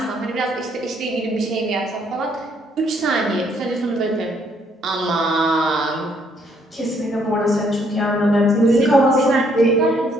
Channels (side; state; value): both; normal; correlation 0.68